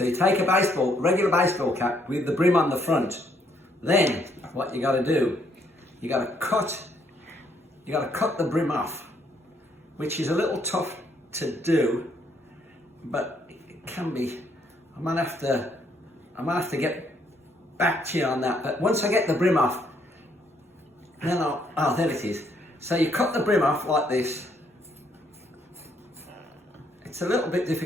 you take a regular baseball cap with the brim on the front. Then what you got to do, you got to cut the brim off, which is a little tough to do, but it can be. I might have to get back to you on that. But once I get the brim off, then there it is. So you cut the brim off like this. It's a little bit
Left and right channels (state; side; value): normal; both; correlation 0.70